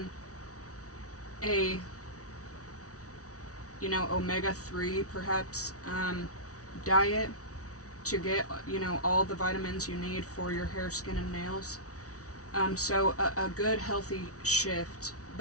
a omega-3 perhaps diet to get all the vitamins you need for your hair, skin, and nails. So a good healthy shift.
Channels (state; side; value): late; right; 0.66 ms